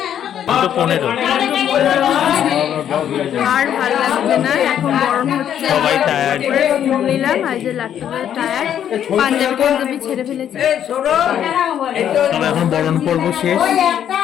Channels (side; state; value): right; quieter; 9.8 dB